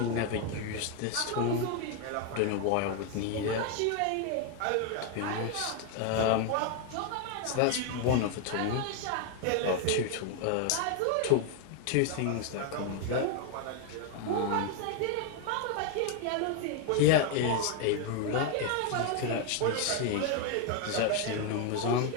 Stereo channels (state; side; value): different; both; correlation 0.01